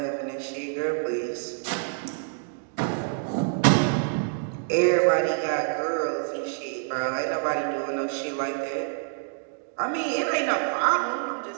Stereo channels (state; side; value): silent; left; digital silence